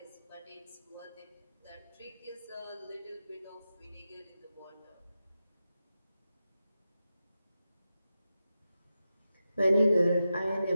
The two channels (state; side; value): inverted; both; correlation -0.91